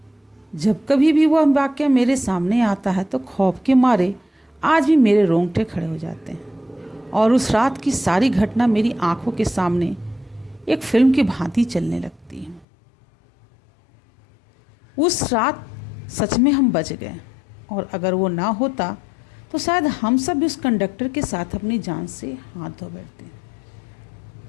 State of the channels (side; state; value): right; drops out; at 12.7 s